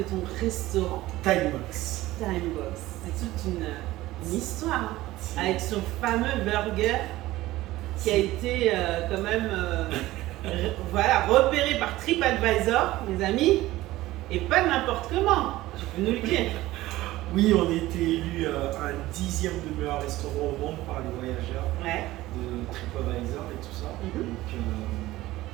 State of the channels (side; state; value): left; quieter; 17.0 dB